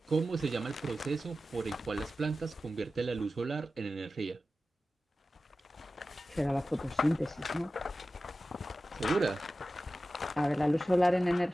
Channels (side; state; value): both; normal; correlation 0.94